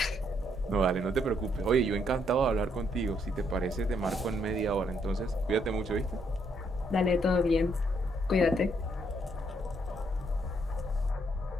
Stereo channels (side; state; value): both; normal; correlation 0.73